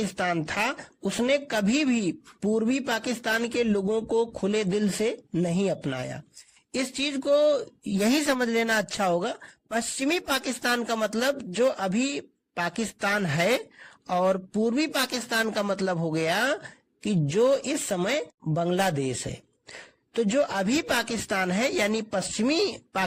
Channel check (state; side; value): identical; both; correlation 1.00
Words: था उसने कभी भी पूर्वी पाकिस्तान के लोगों को खुले दिल से नहीं अपनाया। इस चीज को यही समझ लेना अच्छा होगा। पश्चिमी पाकिस्तान का मतलब जो अभी पाकिस्तान है, और पूर्वी पाकिस्तान का मतलब हो गया कि जो इस समय बांग्लादेश है। तो जो अभी पाकिस्तान है यानी पश्चिमी